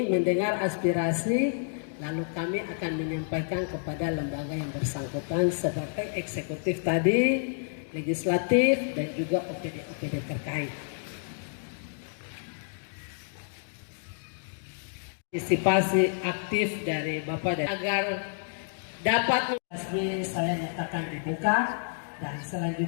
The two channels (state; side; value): silent; right; digital silence